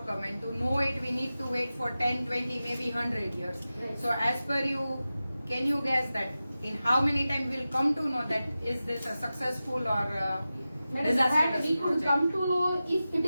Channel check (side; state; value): both; inverted; correlation -0.94